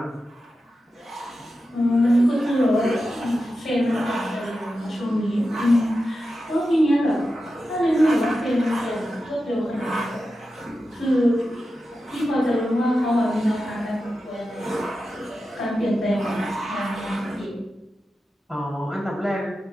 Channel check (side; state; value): both; normal; correlation 0.91